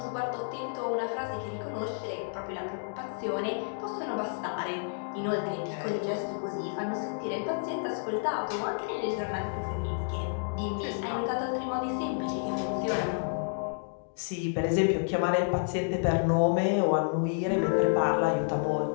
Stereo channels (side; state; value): right; silent; digital silence